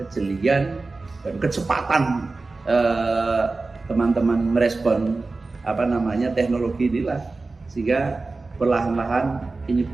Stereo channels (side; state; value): left; quieter; 3.6 dB